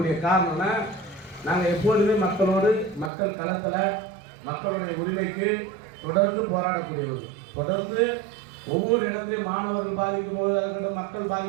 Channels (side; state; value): left; drops out; at 3.1 s